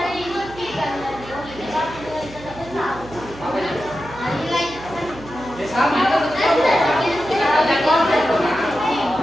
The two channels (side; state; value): right; noise; hum, 17 dB below the sound